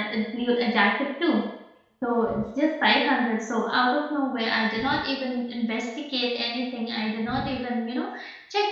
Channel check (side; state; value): both; identical; correlation 1.00